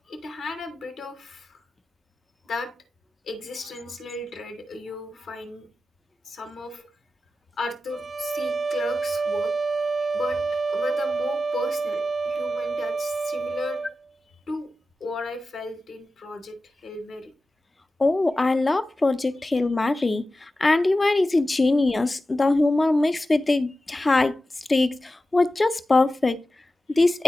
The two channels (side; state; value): both; normal; correlation 0.94